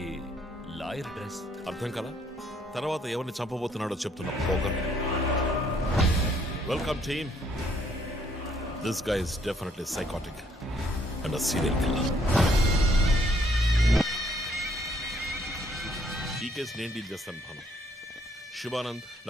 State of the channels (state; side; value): normal; both; correlation 0.67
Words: లాయర్ డ్రెస్ అర్థం కదా? తర్వాత ఎవరిని చంపబోతున్నాడో చెప్తున్నా పోగర్. Welcome team. This guy is definitely psychotic and serial killer. ఈ కేసు నేను డీల్ చేస్తాను భాను. శివానంద్,